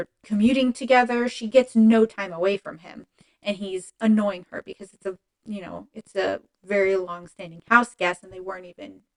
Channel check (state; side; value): identical; both; correlation 1.00